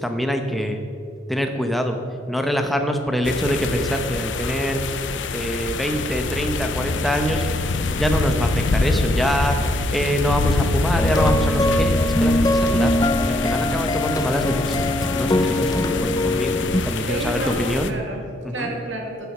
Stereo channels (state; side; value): normal; both; correlation 0.73